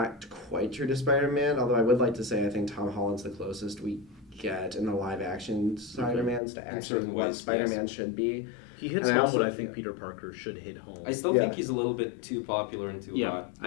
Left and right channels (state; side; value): drops out; right; at 6.4 s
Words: quite true to Spider-Man. Although I would like to say I think Tom Holland's the closest we get in the live action Spider-Mans to actually certain what ways, Spider-Man should be. He hits And I home also- what I think Peter Parker should hit home. I still Yeah. think he's a little bit too popular and too Yeah. hot.